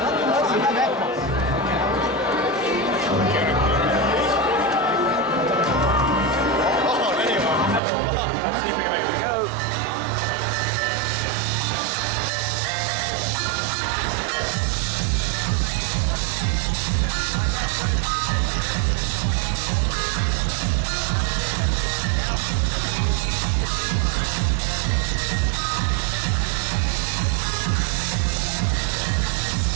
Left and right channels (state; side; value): drops out; left; at 7.8 s